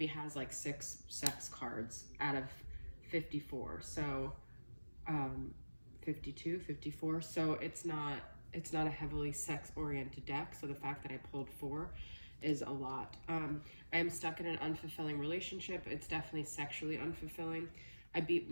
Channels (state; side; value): inverted; both; correlation -1.00